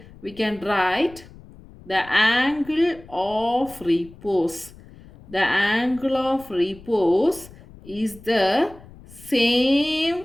we can write the angle of repose. The angle of repose is the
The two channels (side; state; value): left; noise; rumble, 21 dB below the sound